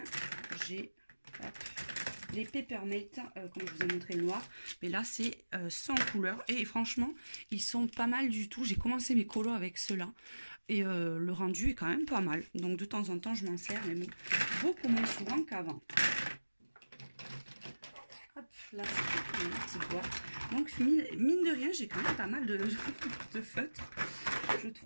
j'ai les Peppermint, comme je vous ai montré le noir. Mais là, c'est sans couleur. Et franchement, ils sont pas mal du tout. J'ai commencé mes colos avec ceux-là. Et le rendu est quand même pas mal. Donc de temps en temps, je m'en sers, mais beaucoup moins souvent qu'avant. Hop, là, c'est une petite boîte. Donc, mine de rien, j'ai quand même pas mal de feutres, je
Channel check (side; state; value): both; inverted; correlation -1.00